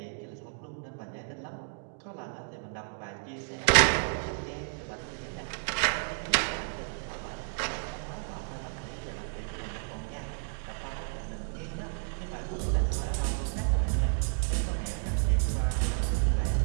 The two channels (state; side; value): silent; left; 57 dB below the other